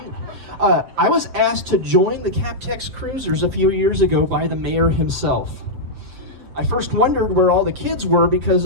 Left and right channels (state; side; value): late; left; 7.6 ms